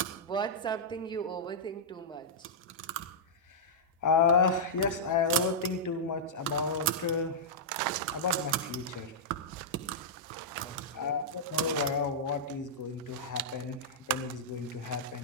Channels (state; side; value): normal; both; correlation -0.11